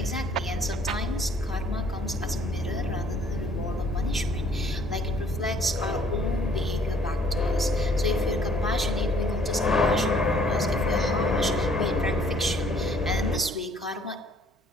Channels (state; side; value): normal; both; correlation 0.60